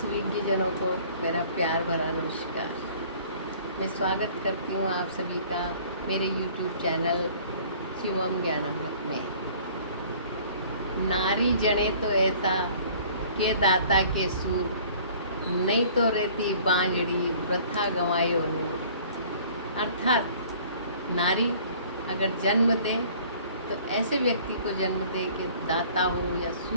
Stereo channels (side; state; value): both; inverted; correlation -0.52